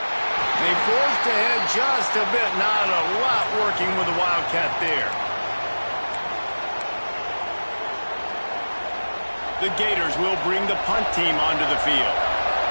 They forced ahead just a bit. Not a lot working with the Wildcat there. The Gators will bring the punt team onto the field.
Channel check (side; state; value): both; inverted; correlation -1.00